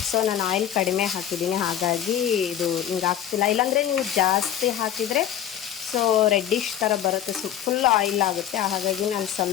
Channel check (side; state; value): right; quieter; 10.5 dB